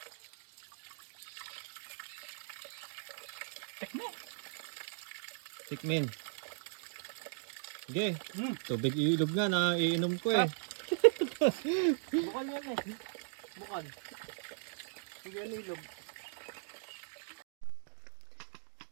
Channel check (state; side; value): silent; left; digital silence